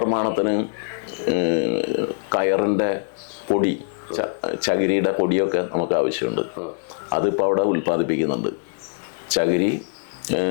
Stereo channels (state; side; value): silent; right; 64 dB below the other